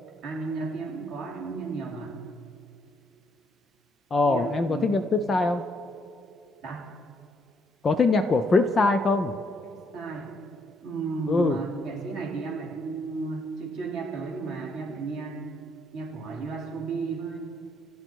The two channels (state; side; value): normal; both; correlation 0.72